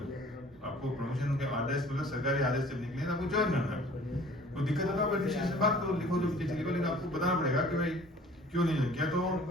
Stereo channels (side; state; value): both; normal; correlation 0.50